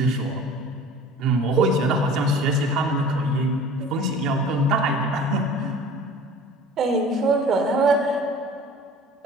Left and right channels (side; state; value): both; normal; correlation 0.43